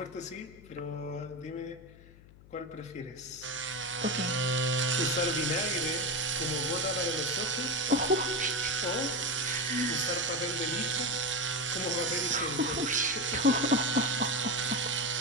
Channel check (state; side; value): noise; left; hum, 22 dB below the sound